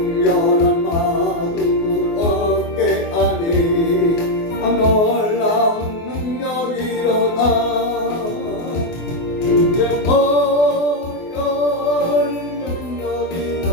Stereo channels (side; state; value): right; late; 24 ms